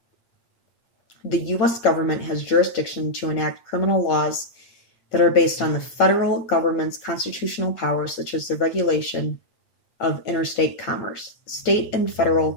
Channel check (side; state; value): right; late; 9.0 ms